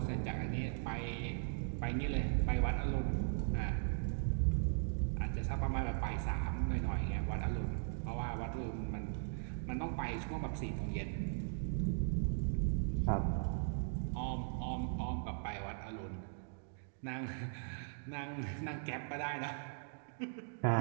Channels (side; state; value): left; silent; digital silence